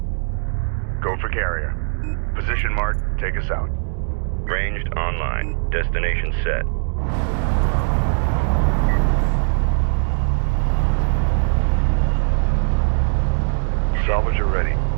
Go for carrier. Position mark, take us out. Ranged online. Destination set. Salvager ready.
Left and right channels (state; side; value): silent; left; digital silence